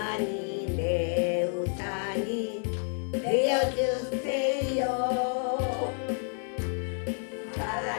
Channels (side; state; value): right; silent; 58 dB below the other